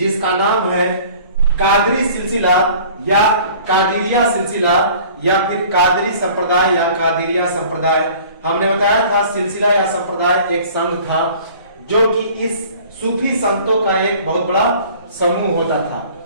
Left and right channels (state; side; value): inverted; both; correlation -0.48